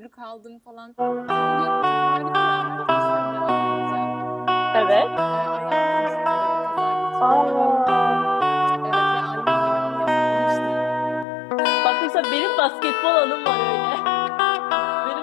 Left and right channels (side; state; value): right; drops out; at 11.2 s